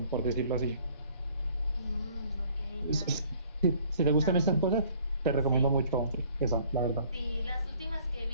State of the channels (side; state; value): both; inverted; correlation -0.57